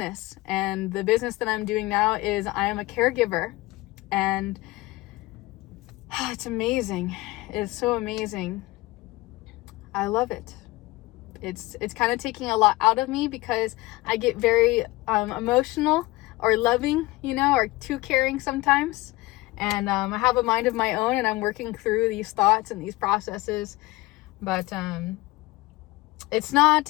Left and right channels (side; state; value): right; quieter; 20.2 dB